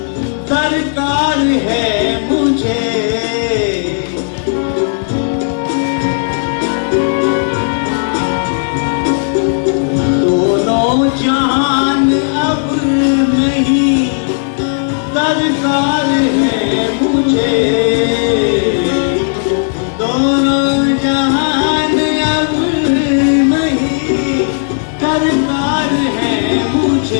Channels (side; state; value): right; silent; digital silence